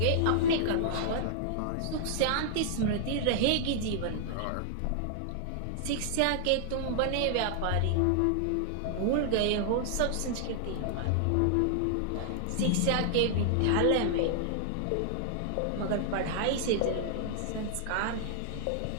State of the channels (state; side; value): different; both; correlation -0.01